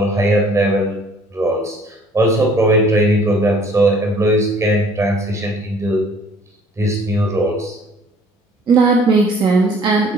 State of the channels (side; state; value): both; normal; correlation 0.56